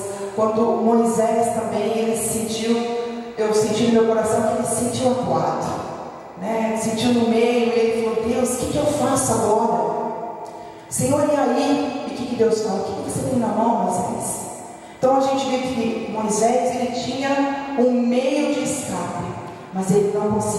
Quando Moisés também, eu senti no meu coração que ele se sentiu acuado. né, sentiu no meio, e ele falou: Deus, o que eu faço agora? Senhor, e aí? E o que Deus fala? O que você tem na mão, Moisés? Então a gente vê que Moisés, ele tinha um meio de escape, mas ele não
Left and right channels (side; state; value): both; identical; correlation 1.00